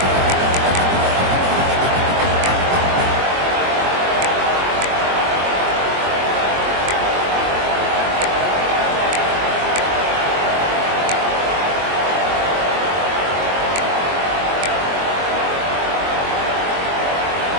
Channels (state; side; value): late; left; 22 ms